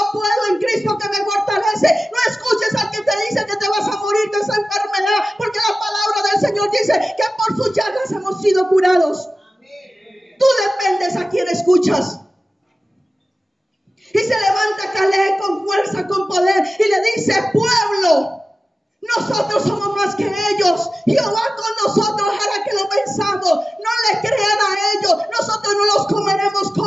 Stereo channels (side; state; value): both; normal; correlation 0.95